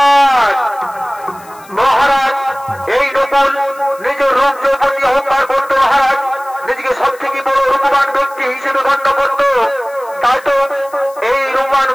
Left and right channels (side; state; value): left; noise; hiss, 24 dB below the sound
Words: মহারাজ এই নকুল নিজের রূপ যৌবনী অহংকার করতো মহারাজ, নিজেকে সব থেকে বড় রূপবান ব্যক্তি হিসেবে গণ্য করত। তাই তো এই রূপবান